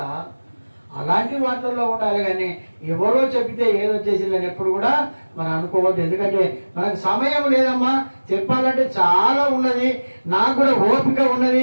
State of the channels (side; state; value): both; inverted; correlation -1.00